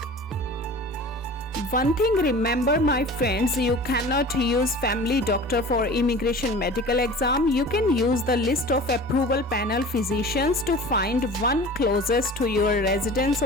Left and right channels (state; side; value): normal; both; correlation 0.39